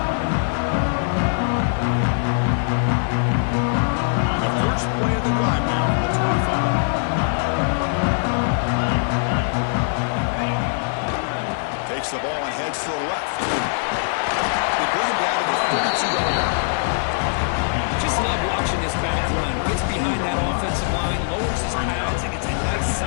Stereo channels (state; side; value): silent; right; digital silence